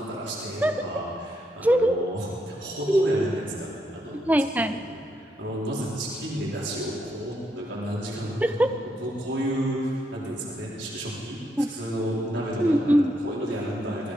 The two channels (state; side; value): normal; both; correlation 0.78